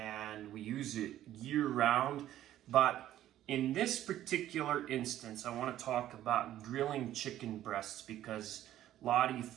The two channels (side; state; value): left; quieter; 12.8 dB